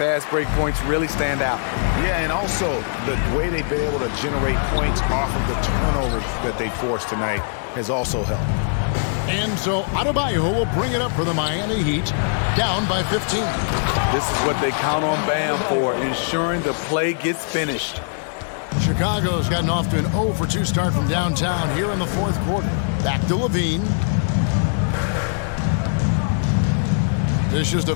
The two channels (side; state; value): right; silent; digital silence